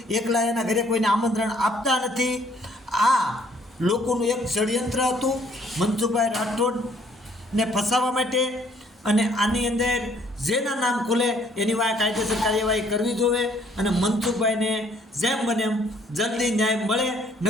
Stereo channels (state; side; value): normal; both; correlation 0.63